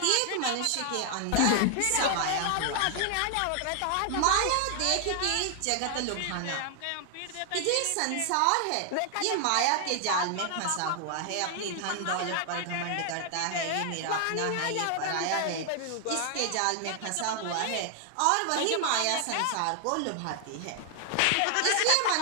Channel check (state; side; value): different; both; correlation 0.00